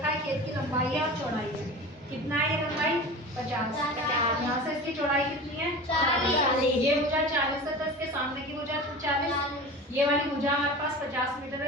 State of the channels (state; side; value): normal; both; correlation 0.34